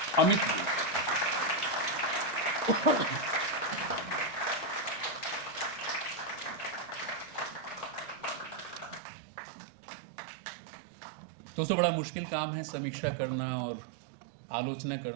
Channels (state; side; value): drops out; left; at 9.0 s